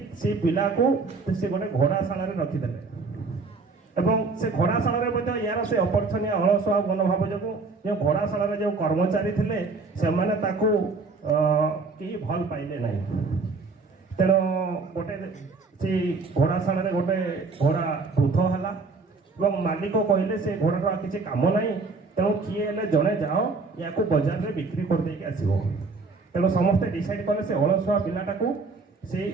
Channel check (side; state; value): left; quieter; 4.1 dB